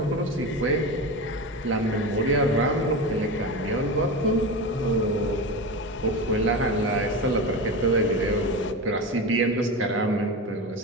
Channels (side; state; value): both; normal; correlation 0.23